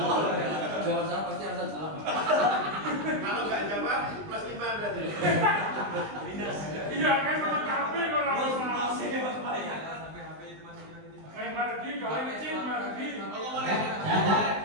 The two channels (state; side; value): late; left; 20 ms